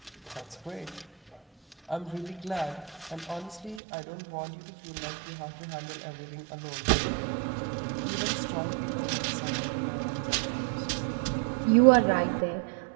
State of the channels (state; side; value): drops out; left; at 3.8 s